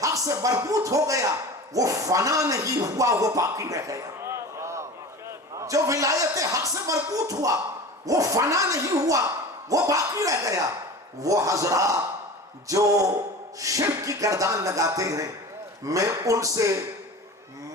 حق سے مربوط ہو گیا وہ فنا نہیں ہوا، وہ باقی رہ گیا. جو ولایت حق سے مربوط ہوا وہ فنا نہیں ہوا، وہ باقی رہ گیا. وہ حضرات جو شرک کی گردان لگاتے ہیں میں ان سے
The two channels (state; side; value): normal; both; correlation 0.34